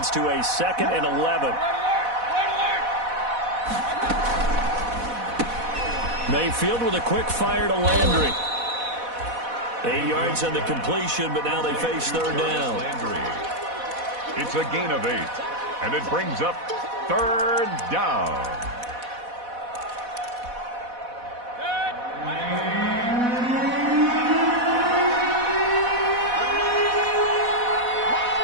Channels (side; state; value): left; late; 4.1 ms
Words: to a 2nd and 11. Mayfield with a quick fire to Landry. 8 yards on the completion, but now they face 3rd down. It's a gain of 8, and it brings up 3rd down.